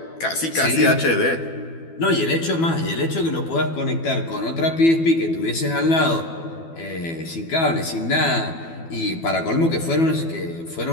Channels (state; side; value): late; right; 12 ms